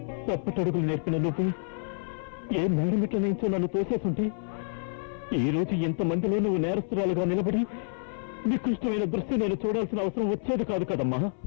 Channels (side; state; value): right; silent; 59 dB below the other